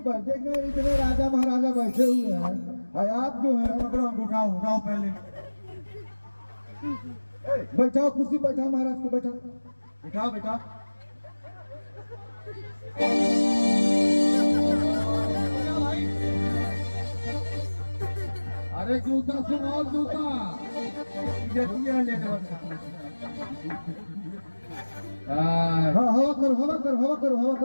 देख रहे हैं, इतने राजा महाराजा बैठे हुए हैं, और आप जो है पकड़ो, उठाओ उठाओ पहले। बैठाओ कुर्सी, बैठाओ महाराज को, बैठाओ। उठाओ बेटा। अरे जूता सुनाओ, जूता हाँ हवा करो, हवा करो, हवा करो, हवा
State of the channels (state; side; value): inverted; both; correlation -1.00